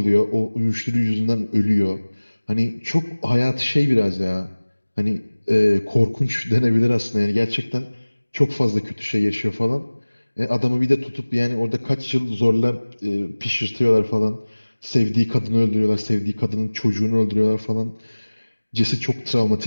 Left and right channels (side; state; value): both; inverted; correlation -1.00